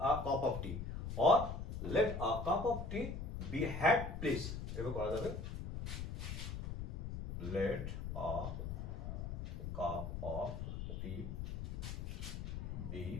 a cup of tea, or let a cup of tea be had please. এভাবে করা যাবে। Let a cup of tea be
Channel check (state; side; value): noise; left; rumble, 5 dB below the sound